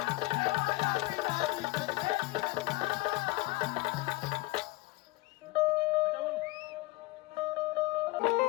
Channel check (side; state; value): right; quieter; 21.2 dB